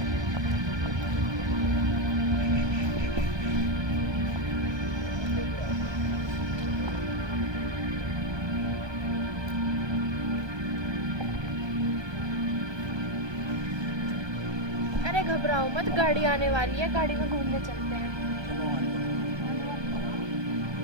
अरे घबराओ मत, गाड़ी आने वाली है, गाड़ी में घूमने चलते हैं।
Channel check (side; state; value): left; late; 1.2 ms